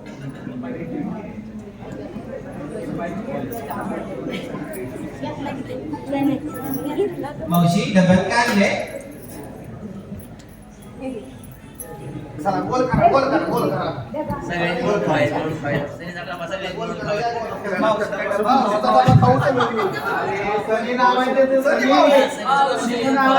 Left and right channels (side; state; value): both; identical; correlation 1.00